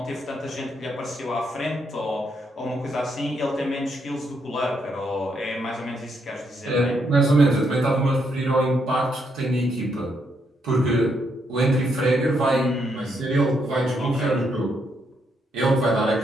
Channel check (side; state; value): both; normal; correlation 0.77